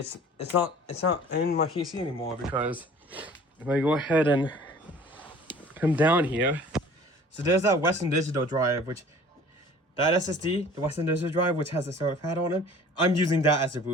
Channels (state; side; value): normal; both; correlation 0.48